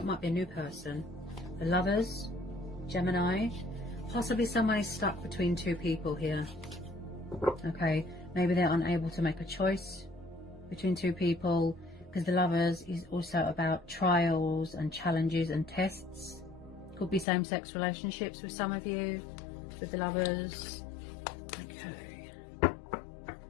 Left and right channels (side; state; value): right; drops out; at 17.2 s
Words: it might be a new person. The Lovers, Gemini. Possibly someone is stuck between two people here. Okay, maybe they're unable to make a choice between two people, because the Lovers is also about trials and challenges and tests. Could be same-sex relationships with some of you, with the Lovers. Okay.